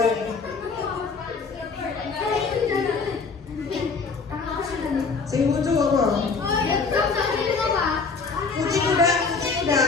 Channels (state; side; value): quieter; right; 4.7 dB